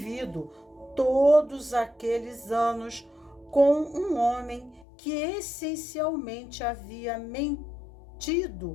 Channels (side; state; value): right; drops out; at 4.9 s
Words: todos aqueles anos com um homem que essencialmente havia